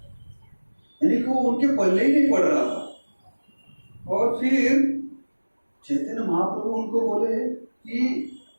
यानी कि वो उनके पल्ले ही नहीं पड़ रहा था। और फिर चैतन्य महाप्रभु उनको बोले कि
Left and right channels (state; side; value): inverted; both; correlation -1.00